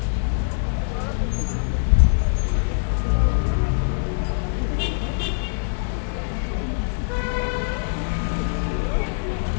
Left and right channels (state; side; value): silent; right; digital silence